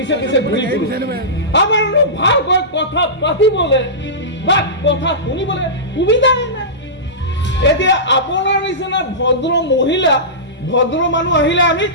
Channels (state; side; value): normal; both; correlation -0.19